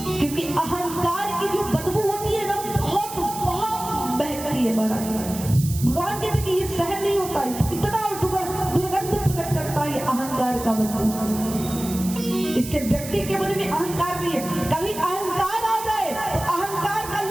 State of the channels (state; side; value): noise; right; hiss, 11 dB below the sound